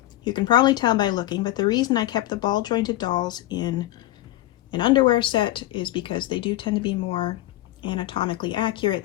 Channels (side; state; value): right; quieter; 15.7 dB